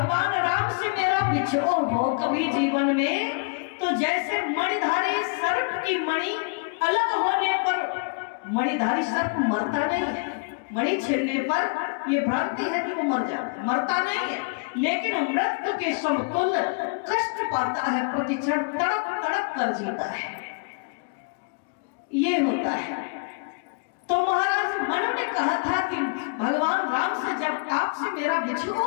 राम से मेरा बिछोह हो कभी जीवन में, तो जैसे मणिधारी सर्प की मणि अलग होने पर मणिधारी सर्प मरता नहीं है, मणि छेड़ने पर यह भ्रांति है कि वो मरता नहीं है, लेकिन मृत्यु के समतुल्य कष्ट पाता है, प्रतिक्षण तड़प तड़प कर जीता है। ये होता है। तो महाराज मनु ने कहा था कि भगवान राम से जब आपसे मेरा बिछोह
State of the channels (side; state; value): right; quieter; 36.1 dB